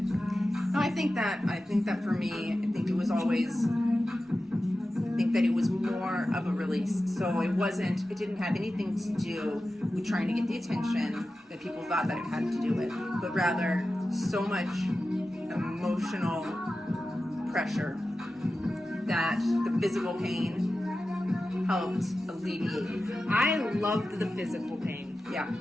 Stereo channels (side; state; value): both; normal; correlation 0.93